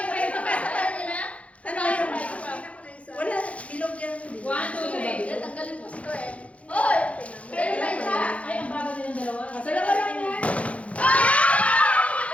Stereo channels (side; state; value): right; late; 0.064 ms